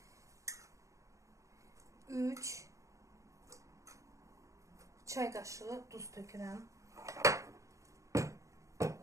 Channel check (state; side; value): late; left; 0.15 ms